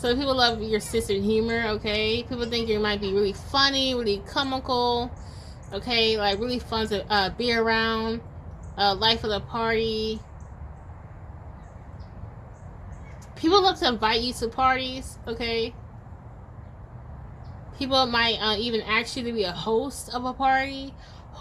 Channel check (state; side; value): identical; both; correlation 1.00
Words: people love your sense of humor, okay? People think you might be really funny, really comical, okay? Like really fun to be around. Life of the party. People love to invite you to parties, okay? People might even ask you to be a host of a party,